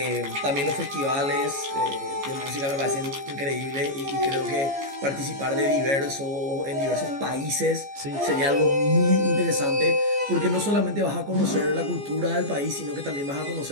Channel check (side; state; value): left; late; 14 ms